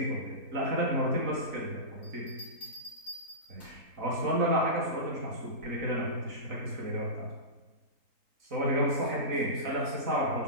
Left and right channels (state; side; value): late; left; 3.8 ms